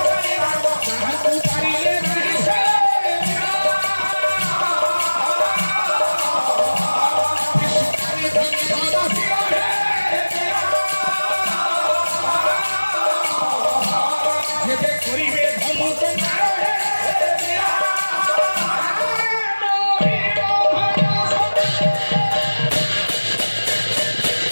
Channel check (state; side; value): inverted; both; correlation -1.00